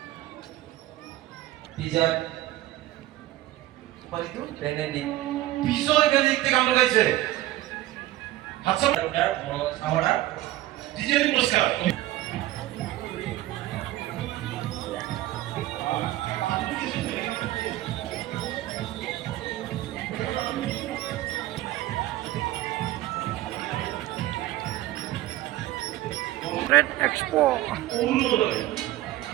বিজয় বেনেডিক্ট থেকে গান গাইছে হাতছ আমরা ডিজে পুরস্কার ট্রেড এক্সপো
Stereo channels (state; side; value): quieter; left; 15.7 dB